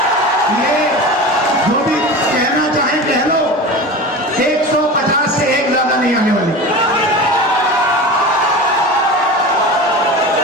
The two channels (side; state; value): both; normal; correlation 0.30